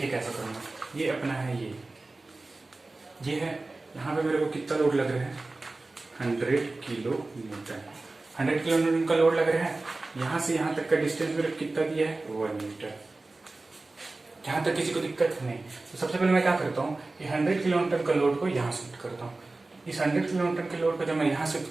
कैसा करूंगा, ये अपना है, ये है, यहाँ पे मेरे को कितना लोड लग रहा है, 100 किलो न्यूटन। 100 किलो न्यूटन का लोड लग रहा है। यहां से यहां तक का डिस्टेंस मेरे कितना दिया है, 1 मीटर। यहां तक किसी को दिक्कत नहीं। तो सबसे पहले मैं क्या करता हूँ, ये 100 किलो न्यूटन का लोड को यहाँ शिफ्ट करता हूँ। इस 100 किलो न्यूटन के लोड को जब मैं यहाँ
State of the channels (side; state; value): left; quieter; 3.2 dB